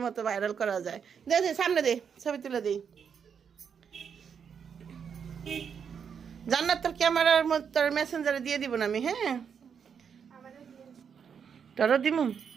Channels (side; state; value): left; quieter; 7.0 dB